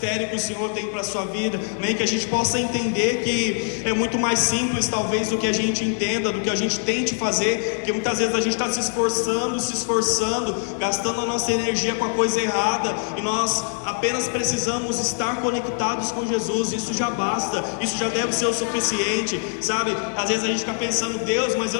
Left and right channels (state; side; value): silent; right; 62 dB below the other